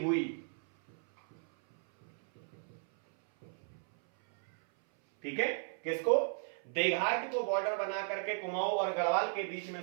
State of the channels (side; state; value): left; silent; 54 dB below the other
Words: ठीक है, किसको? देघाट को बॉर्डर बना करके कुमाऊं और गढ़वाल के बीच में